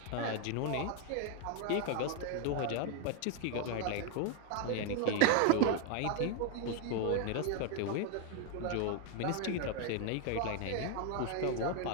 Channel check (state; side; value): different; both; correlation 0.01